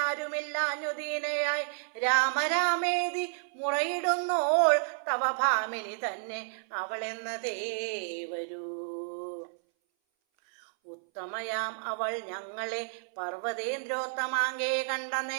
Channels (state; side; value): silent; left; 57 dB below the other